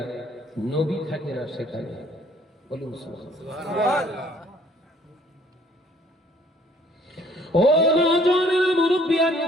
নবী থাকে না সেখানে। বলুন সুবহানাল্লাহ। ও নওজোয়ানেরা,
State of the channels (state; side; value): normal; both; correlation 0.60